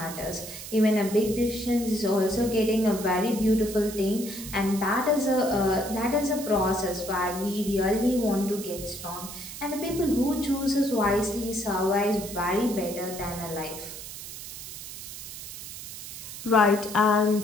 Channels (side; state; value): right; noise; hiss, 11 dB below the sound